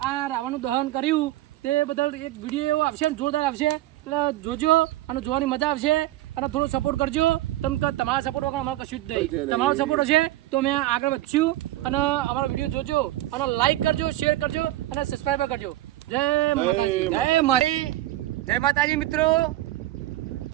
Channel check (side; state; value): left; quieter; 15.6 dB